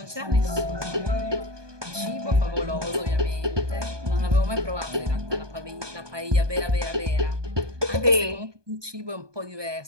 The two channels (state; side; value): late; left; 1.2 ms